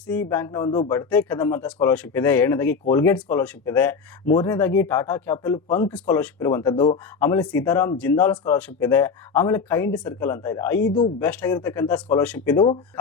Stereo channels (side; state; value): right; quieter; 5.3 dB